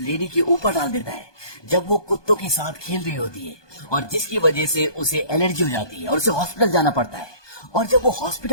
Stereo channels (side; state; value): right; late; 1.2 ms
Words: के ऊपर डाल देता है जब वो कुत्तों के साथ खेल रही होती है, और जिसकी वजह से उसे एलर्जी हो जाती है और उसे हॉस्पिटल जाना पड़ता है। और जब वो